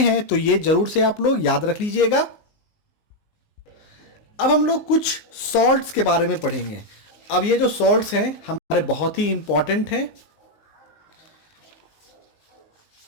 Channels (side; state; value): right; late; 19 ms